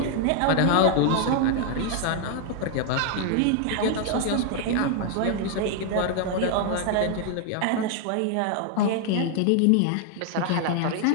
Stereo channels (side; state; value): both; different; correlation 0.00